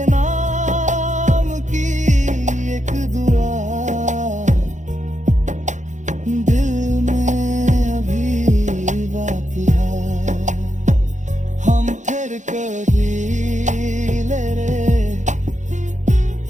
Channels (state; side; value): late; left; 0.35 ms